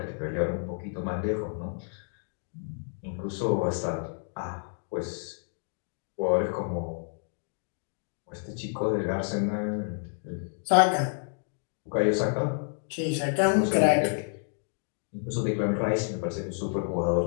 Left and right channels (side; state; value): right; silent; 58 dB below the other